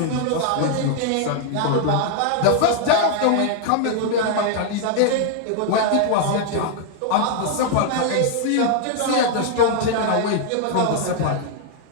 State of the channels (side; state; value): both; different; correlation 0.00